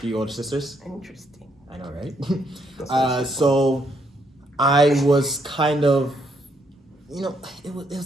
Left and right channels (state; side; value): normal; both; correlation 0.73